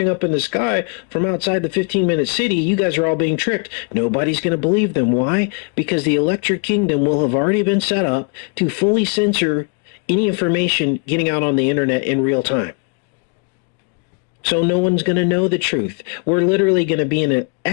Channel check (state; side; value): quieter; right; 36.1 dB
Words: up in the sky from outside the 15-minute city. You guys are all being tricked. Nobody's going to believe them. Why? Because the electric kingdom will have already been set up to fully censor any information getting out on the internet in real time. So no one's going to know the truth. We're literally going to be in a